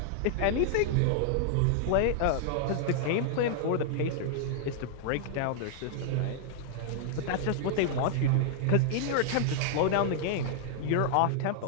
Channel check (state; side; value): different; both; correlation -0.01